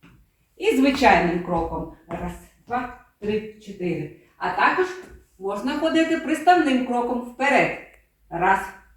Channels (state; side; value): identical; both; correlation 1.00